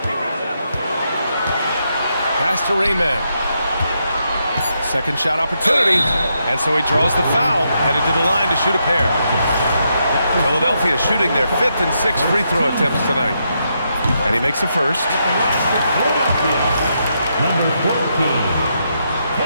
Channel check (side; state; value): both; inverted; correlation -0.80